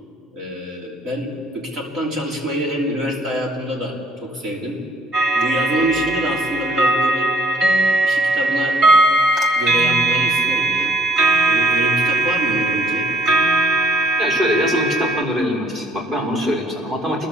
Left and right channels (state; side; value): normal; both; correlation 0.62